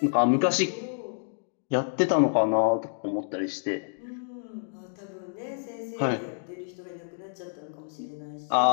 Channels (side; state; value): right; silent; digital silence